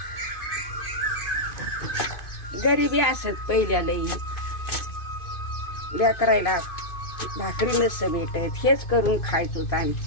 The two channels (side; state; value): right; late; 2.5 ms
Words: गरिबी असत पहिल्या लई, लेकरायला भाकरी नसतं भेटत, हेच करून खायचो